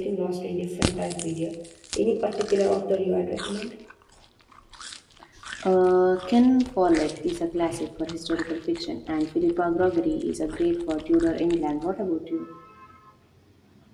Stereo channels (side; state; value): both; identical; correlation 1.00